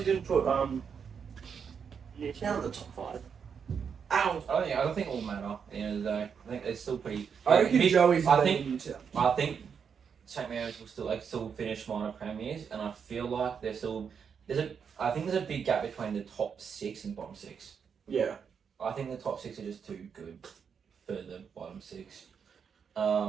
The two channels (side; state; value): left; quieter; 6.8 dB